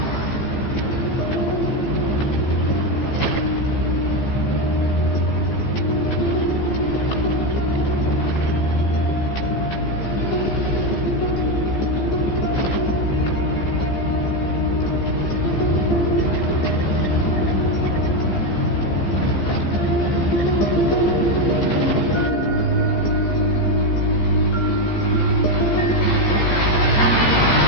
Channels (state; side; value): late; right; 15 ms